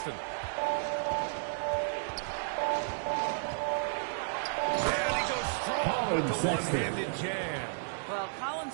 And he goes strong with the one-handed jam. Well, Colin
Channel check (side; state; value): left; silent; digital silence